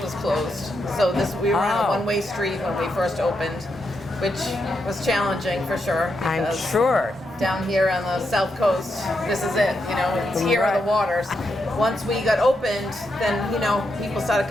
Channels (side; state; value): both; normal; correlation 0.83